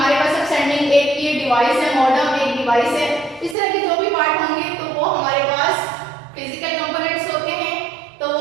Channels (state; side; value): drops out; left; at 3.6 s